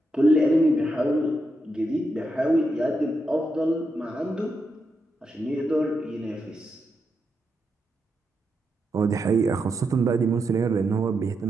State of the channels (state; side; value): normal; both; correlation 0.84